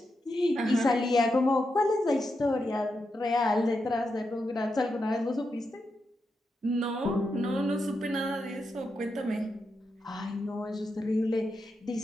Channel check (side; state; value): both; normal; correlation 0.86